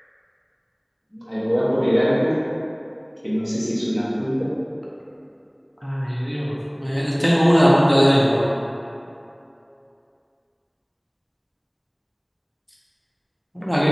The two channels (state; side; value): identical; both; correlation 1.00